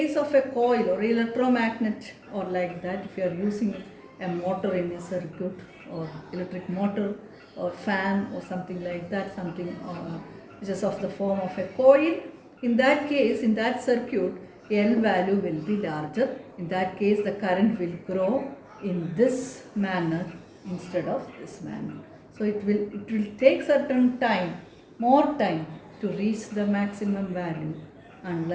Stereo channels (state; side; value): identical; both; correlation 1.00